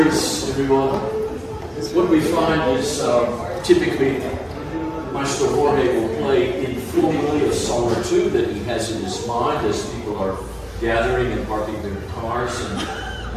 everyone. What we find is typically Maestro Jorge will play informally a song or two that he has in his mind as people are gathering and parking their cars and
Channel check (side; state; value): both; identical; correlation 1.00